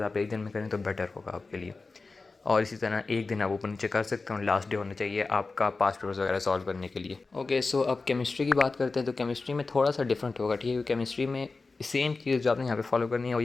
आप एक दिन में करें तो बेटर होगा आपके लिए। और इसी तरह एक दिन आप ऊपर नीचे कर सकते हो, लास्ट डे होना चाहिए आपका पास्ट पेपर्स वगैरह सॉल्व करने के लिए। ओके, सो अब केमिस्ट्री की बात करते हैं। तो केमिस्ट्री में थोड़ा सा डिफरेंट होगा, ठीक है। केमिस्ट्री में सेम चीज़ जो आपने यहाँ पे फॉलो करनी है वो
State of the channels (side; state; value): right; quieter; 3.9 dB